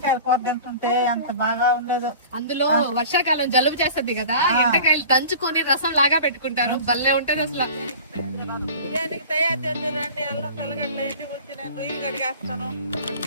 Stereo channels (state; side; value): inverted; both; correlation -0.41